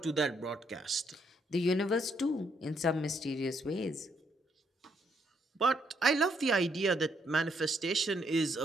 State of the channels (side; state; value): both; normal; correlation 0.73